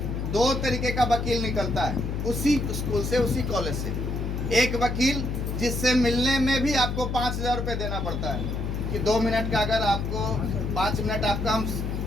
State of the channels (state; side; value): noise; left; hum, 2 dB below the sound